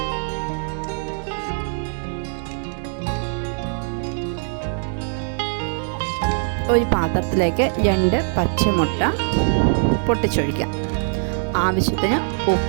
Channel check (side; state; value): left; silent; digital silence